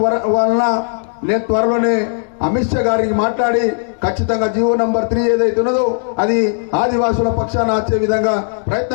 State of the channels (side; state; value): right; silent; 67 dB below the other